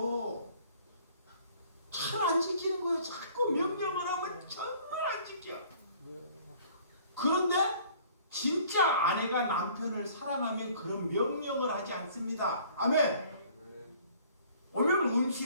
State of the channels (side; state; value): both; inverted; correlation -0.55